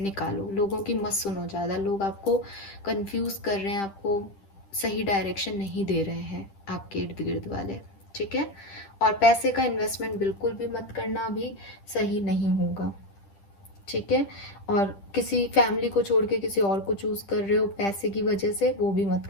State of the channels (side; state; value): right; late; 10 ms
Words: लोगों की मत सुनो ज़्यादा, लोग आपको कंफ्यूज कर रहे हैं, आपको सही डायरेक्शन नहीं दे रहे हैं आपके इर्द गिर्द वाले, ठीक है। और पैसे का इन्वेस्टमेंट बिल्कुल भी मत करना, अभी सही नहीं होगा, ठीक है। और किसी फैमिली को छोड़ के किसी और को चूज कर रहे हो पैसे की वजह से, वो भी मत